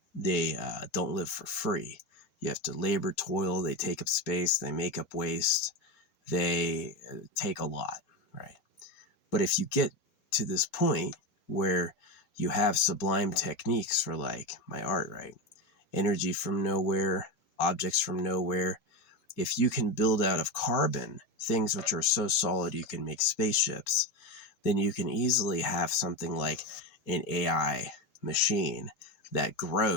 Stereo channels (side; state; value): right; late; 4.8 ms